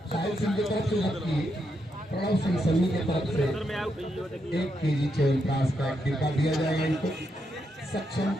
साहिल सिंह की तरफ से, जबकि प्रणव सिंह सन्नी की तरफ से 1 केजी च्यवनप्राश का एक डिब्बा दिया जाएगा इनको। सक्षम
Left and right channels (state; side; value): normal; both; correlation 0.81